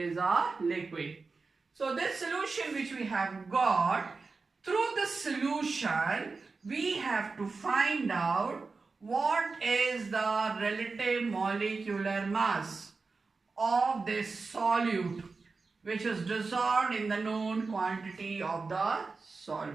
a liquid. So this solution which we have got, through the solution we have to find out what is the relative molecular mass of this solute which is dissolved in the known quantity of the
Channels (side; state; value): left; quieter; 4.2 dB